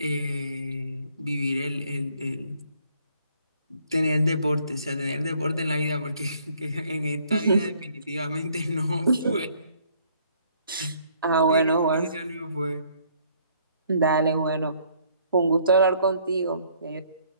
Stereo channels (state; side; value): inverted; both; correlation -0.64